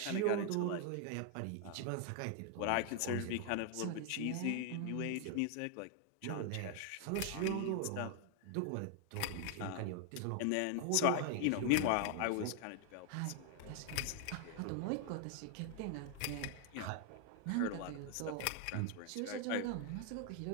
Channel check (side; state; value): both; different; correlation 0.00